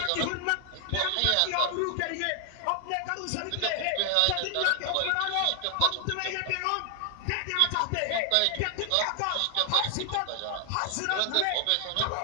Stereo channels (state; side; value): different; both; correlation 0.00